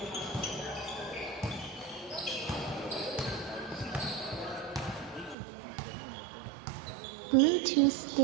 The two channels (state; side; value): drops out; left; at 5.4 s